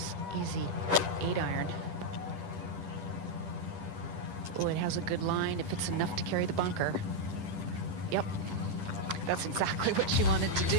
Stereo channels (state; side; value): late; left; 10 ms